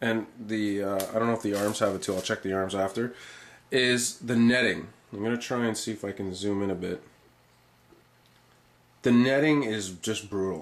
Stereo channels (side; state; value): both; identical; correlation 1.00